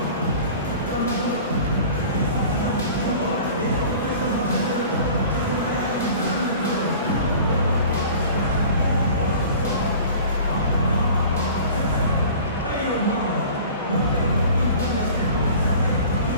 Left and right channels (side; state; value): both; inverted; correlation -0.43